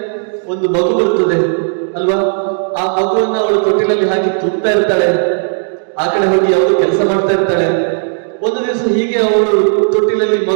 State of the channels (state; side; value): silent; left; digital silence